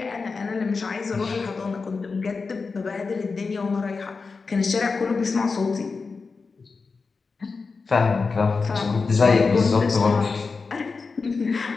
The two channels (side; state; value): right; quieter; 4.5 dB